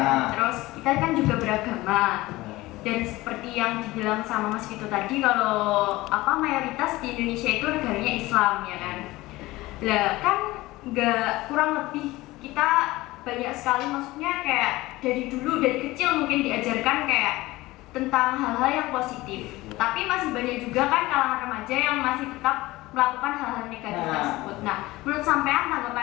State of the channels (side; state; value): right; quieter; 19.1 dB